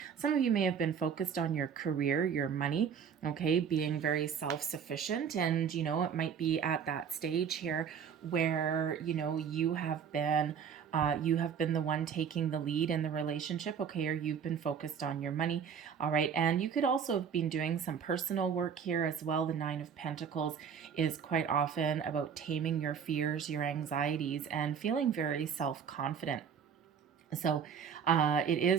Some of you may have been focused on your career, your money, okay, being very self-sufficient. And, you know, it might be at that stage here where, you know, you have been the one taking the lead in the relationship, okay, or you've been focused on your money, all right. And you could also have been doing some personal work here as well. The Nine of Pentacles is quite often about taming your fears, your anxieties, and feeling very self-confident. So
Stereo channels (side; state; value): left; quieter; 7.3 dB